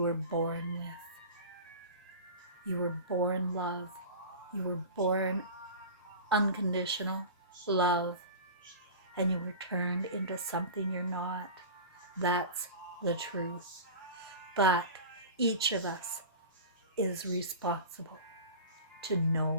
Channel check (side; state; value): both; inverted; correlation -0.33